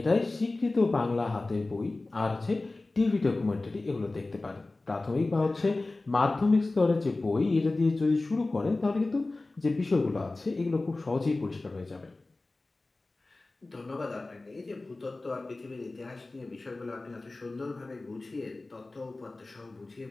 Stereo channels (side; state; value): right; quieter; 3.2 dB